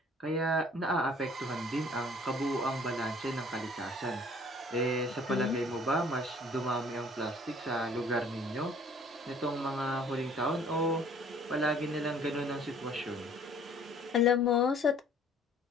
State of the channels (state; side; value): normal; both; correlation 0.54